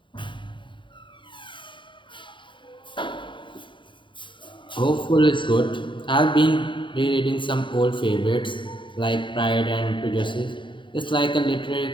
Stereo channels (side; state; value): right; late; 0.24 ms